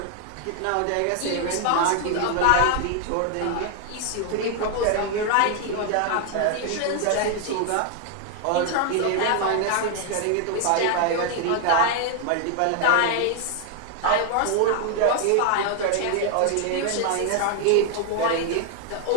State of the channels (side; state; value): both; different; correlation 0.00